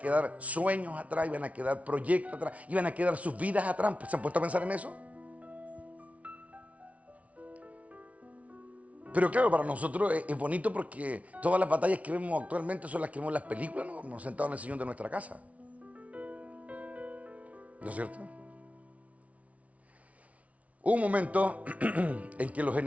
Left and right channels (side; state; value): left; late; 0.066 ms